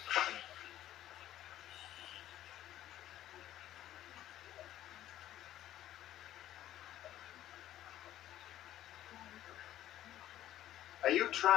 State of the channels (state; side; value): quieter; right; 13.0 dB